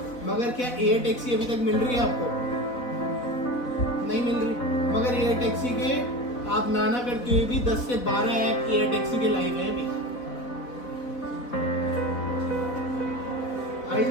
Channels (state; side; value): late; right; 4.1 ms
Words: मगर क्या एयर टैक्सी अभी तक मिल रही है आपको? नहीं मिल रही। मगर एयर टैक्सी के आप नाना करते हुए भी 10 से 12 ऐप एयर टैक्सी के लाइव है अभी।